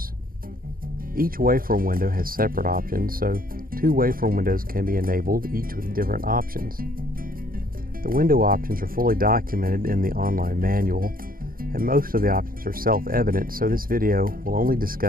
Each waveform window has separate options, so two waveform windows can be enabled, each with different options. The window options are fully documented in the online manual, and most of the options are self-evident, so this video will only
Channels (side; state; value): left; late; 0.42 ms